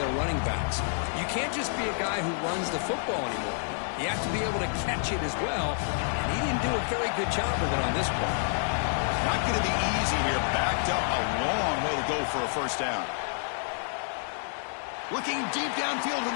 running backs. You can't just be a guy who runs the football anymore. You have to be able to catch it as well. And he didn't do a very good job of it on this play. Not going to be easy here. Backed up a long way to go for a first down. Looking deep downfield to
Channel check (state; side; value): silent; right; digital silence